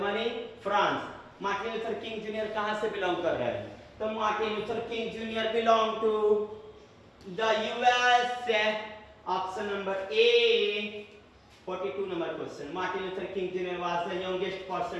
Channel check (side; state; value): both; identical; correlation 1.00